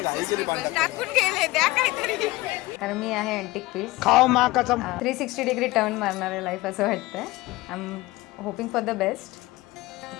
टाकून गेले द्या काहीतरी. कारण मी आहे अँटिक पीस. खाओ माँ कसम. 360 डिग्री टर्न मारणार आहे लाईफ असं वाटतंय. I am hoping for the best.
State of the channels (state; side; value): quieter; right; 20.0 dB